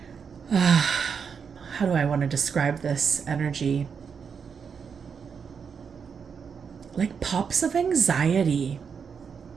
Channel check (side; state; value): left; quieter; 6.4 dB